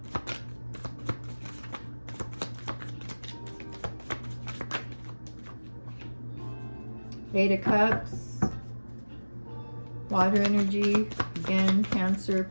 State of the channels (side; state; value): both; inverted; correlation -1.00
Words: Eight of Cups. Water energy. Again, Cancer,